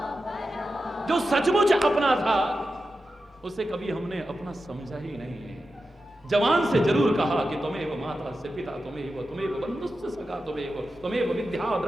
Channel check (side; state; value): both; normal; correlation 0.91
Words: जो सचमुच अपना था उसे कभी हमने अपना समझा ही नहीं है। जवान से जरूर कहा कि तुम्हें माता से पिता, तुम्हें बंधुश्च सखा, तुम्हें विद्या